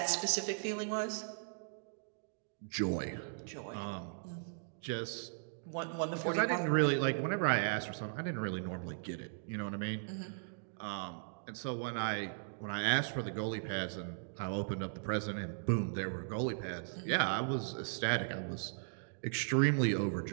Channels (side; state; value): left; silent; digital silence